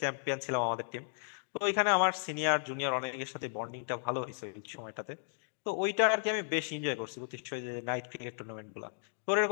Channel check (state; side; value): silent; right; digital silence